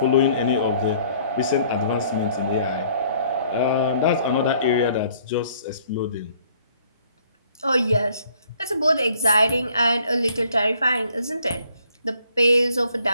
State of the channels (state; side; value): inverted; both; correlation -0.60